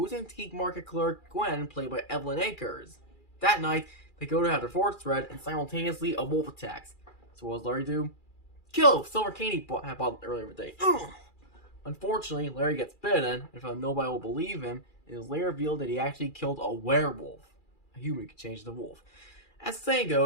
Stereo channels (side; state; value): right; late; 2.4 ms